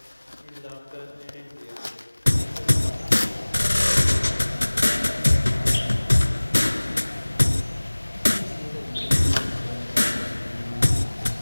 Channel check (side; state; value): both; inverted; correlation -1.00